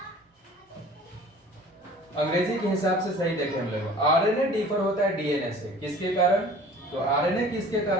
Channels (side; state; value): both; normal; correlation 0.47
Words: अंग्रेजी के हिसाब से सही देखें हम लोग। आरएनए डिफर होता है डीएनए से, किसके कारण? तो आरएनए किसके